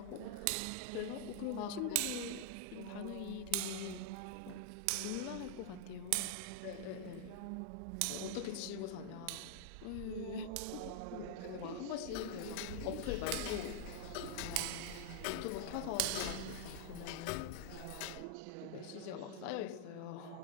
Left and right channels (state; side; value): different; both; correlation 0.00